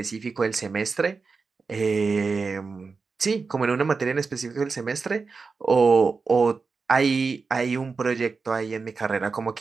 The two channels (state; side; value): quieter; left; 4.6 dB